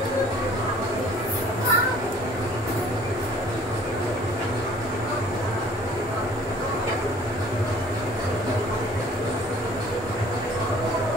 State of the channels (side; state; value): both; normal; correlation 0.53